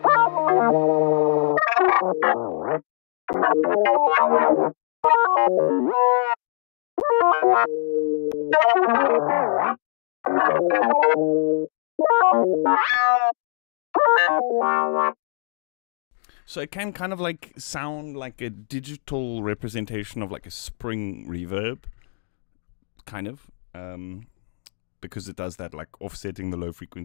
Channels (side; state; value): right; silent; 64 dB below the other